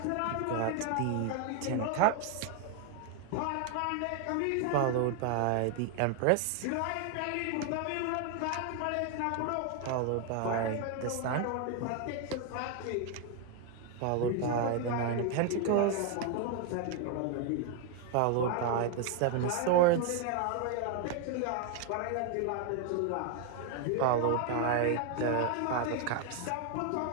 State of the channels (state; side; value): different; both; correlation 0.01